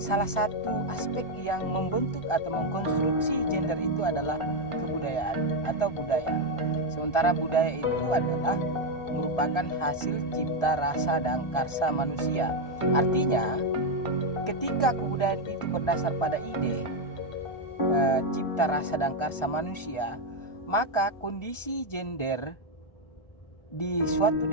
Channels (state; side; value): late; right; 1.4 ms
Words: satu aspek yang membentuk atau mengkonstruksi gender itu adalah kebudayaan atau budaya. Sementara budaya itu adalah merupakan hasil cipta rasa dan karsa manusia. Artinya, ketika kebudayaan itu berdasar pada ide cipta rasa dan karsa manusia, maka kondisi gender di suatu